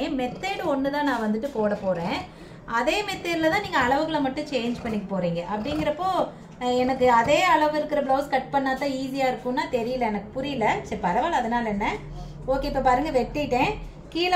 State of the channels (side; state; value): both; identical; correlation 1.00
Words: மெத்தேடு ஒன்று தான் நான் வந்துட்டு போட போகிறேன். அதே மெத்தேடில் தான் நீங்கள் அளவுகளை மட்டும் சேஞ்ச் பண்ணிக்க போகிறீங்க. அப்படிங்கிறப்போ எனக்கு அதே அளவு இருக்கிற ப்ளவுஸ் கட் பண்ணால் தான் ஈஸியாக இருக்கும்னா தெரியல, எனக்கு புரியல. சரி பரவாயில்ல, அதனால் என்ன. ஓகே, இப்போ பாருங்கள் வெட்டிட்டேன்.